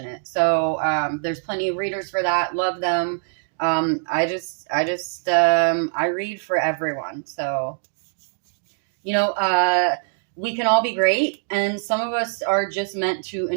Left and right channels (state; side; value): silent; left; digital silence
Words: it. So there's plenty of readers for that. Love them. I read for everyone. So, we can all be great, and some of us are just meant to